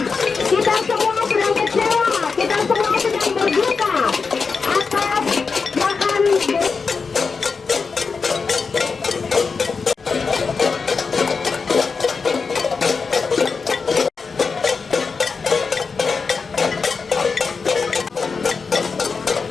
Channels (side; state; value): right; quieter; 4.9 dB